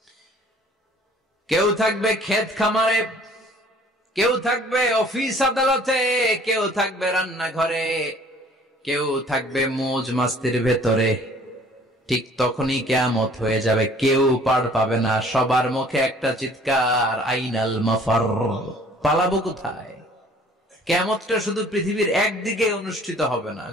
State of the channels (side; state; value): both; normal; correlation 0.54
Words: কেউ থাকবে ক্ষেত খামারে, কেউ থাকবে অফিস আদালতে, কেউ থাকবে রান্নাঘরে, কেউ থাকবে মৌজ মাস্তির ভেতরে। ঠিক তখনই কিয়ামত হয়ে যাবে, কেউ পার পাবে না, সবার মুখে একটা চিৎকার, আইনাল মাফার, পালাবো কোথায়? কিয়ামতটা শুধু পৃথিবীর একদিকে অনুষ্ঠিত হবে না,